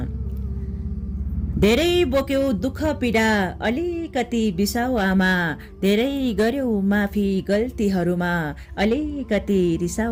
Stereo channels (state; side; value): identical; both; correlation 1.00